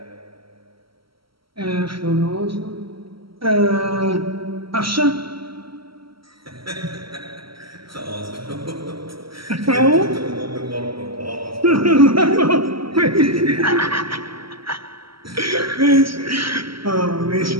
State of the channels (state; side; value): late; left; 0.75 ms